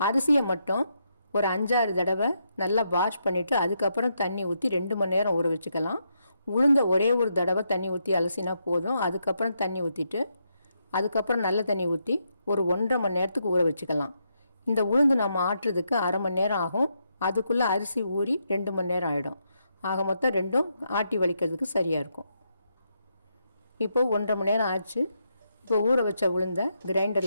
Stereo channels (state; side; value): inverted; both; correlation -0.80